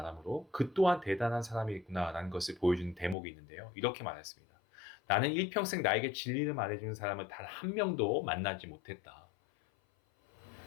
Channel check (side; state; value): right; drops out; at 3.2 s